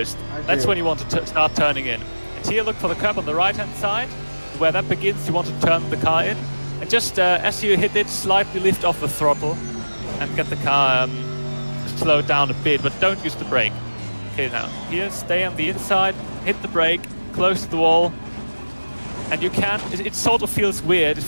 That's when you want to start turning in. And here, look for the curb on the right-hand side, where that begins. You want to turn the car in, and just as you hit it, slightly lift off the throttle and get the car slowed down a bit, but don't use the brake. Okay, now here, stay on the inside, hit the brake, close to the wall, and you can. It sort of feels weird. It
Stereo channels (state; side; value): inverted; both; correlation -1.00